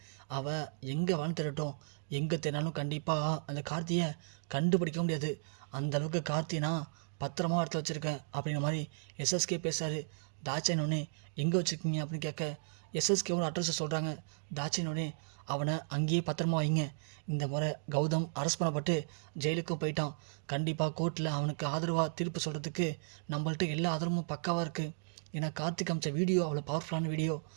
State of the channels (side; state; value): left; silent; digital silence